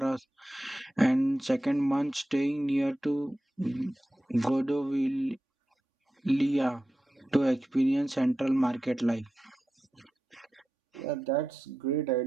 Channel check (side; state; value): both; normal; correlation 0.91